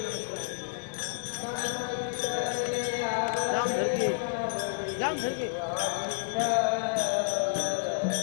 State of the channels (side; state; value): right; silent; digital silence